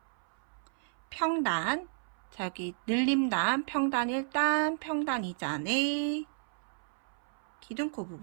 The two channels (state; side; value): silent; left; 56 dB below the other